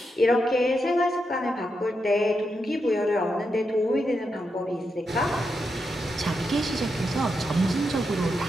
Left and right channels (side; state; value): both; normal; correlation 0.85